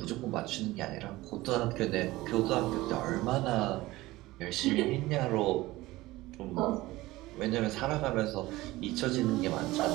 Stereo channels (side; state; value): left; quieter; 18.6 dB